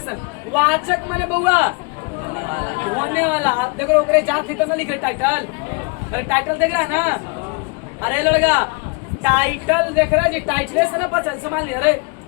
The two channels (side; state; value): right; quieter; 31.3 dB